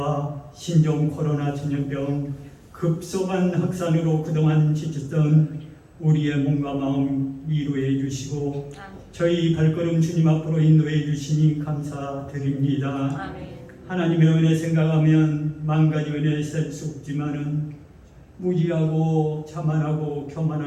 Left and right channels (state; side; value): identical; both; correlation 1.00